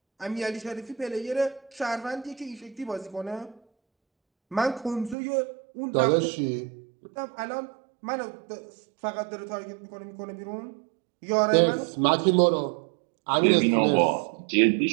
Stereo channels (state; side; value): drops out; left; at 5.2 s